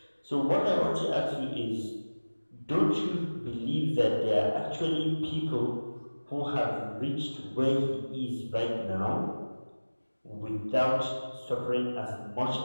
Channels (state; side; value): inverted; both; correlation -1.00